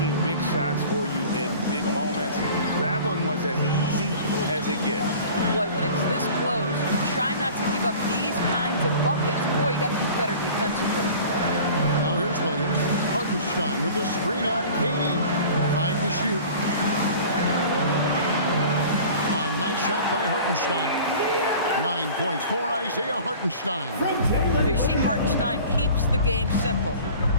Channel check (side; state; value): both; inverted; correlation -0.43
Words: big shots for you in big moments. That one was as easy as it gets. Boy, when it's this close, you try not to give up these kinds of buckets. Boy, you got to be better defensively. Now here's Williams. Hartenstein with the screen on KD. 5 to shoot. A nice shot by Hartenstein. 9 points for Isaiah Hartenstein. You see, Hartenstein keeps the game simple.